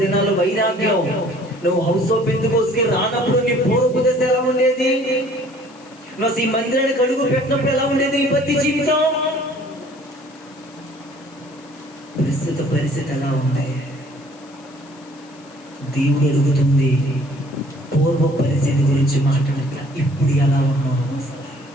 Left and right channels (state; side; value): noise; left; hiss, 26 dB below the sound